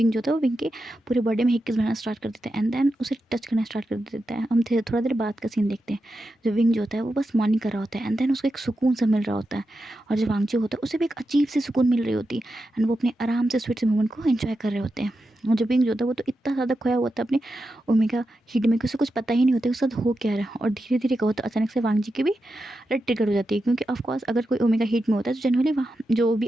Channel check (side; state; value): both; normal; correlation 0.89